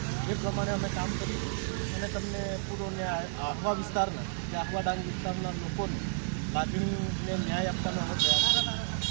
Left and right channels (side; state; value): left; silent; digital silence